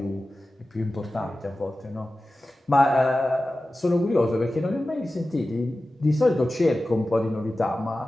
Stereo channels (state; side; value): normal; both; correlation 0.95